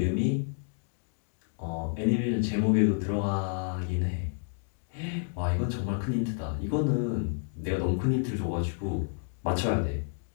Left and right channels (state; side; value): silent; right; digital silence